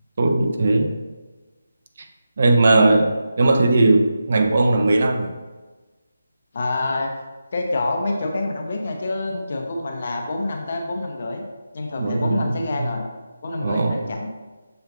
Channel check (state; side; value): inverted; both; correlation -0.89